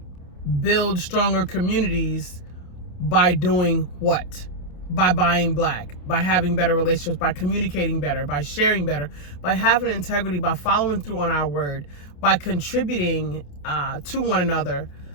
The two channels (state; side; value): late; right; 28 ms